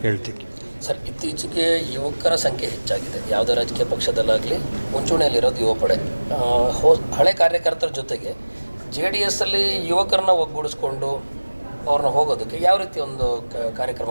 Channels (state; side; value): inverted; both; correlation -1.00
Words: ಹೇಳ್ತೀವಿ. ಸರ್, ಇತ್ತೀಚೆಗೆ ಯುವಕರ ಸಂಖ್ಯೆ ಹೆಚ್ಚಾಗಿದೆ. ಯಾವುದೇ ರಾಜಕೀಯ ಪಕ್ಷದಲ್ಲಾಗಲಿ ಮುಂಚೂಣಿಯಲ್ಲಿರೋದು ಯುವ ಪಡೆ. ಹಳೆ ಕಾರ್ಯಕರ್ತರ ಜೊತೆಗೆ JDSಲ್ಲಿ ಯುವಕರನ್ನ ಒಗ್ಗೂಡಿಸ್ಕೊಂಡು ಅವ್ರನ್ನ ಹೋಗೋದಕ್ಕೆ ಯಾವ ರೀತಿ ಒಂದು